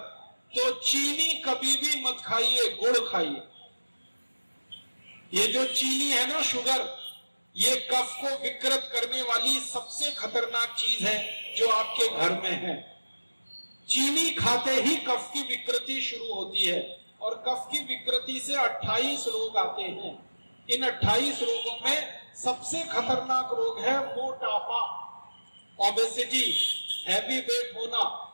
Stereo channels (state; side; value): inverted; both; correlation -1.00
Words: तो चीनी कभी भी मत खाइए, गुड़ खाइए। ये जो चीनी है ना, शुगर, ये कफ को विकृत करने वाली सबसे खतरनाक चीज है जो आपके घर में है। चीनी खाते ही कफ की विकृति शुरू होती है, और कफ की विकृति से 28 रोग आते हैं। इन 28 रोगों में सबसे खतरनाक रोग है मोटापा, ओबेसिटी, हैवी वेट होना,